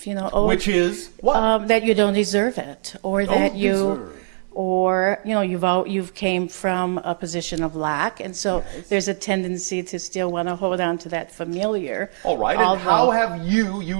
Which is what? that you don't deserve it, or that Don't you, deserve. or you've came from a position of lack, and so Yes. there's a tendency to still want to hold on to that familiar. All right, and how have you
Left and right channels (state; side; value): silent; left; digital silence